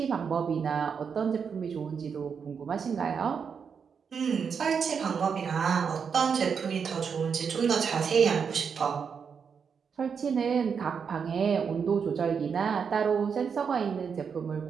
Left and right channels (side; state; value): left; quieter; 6.4 dB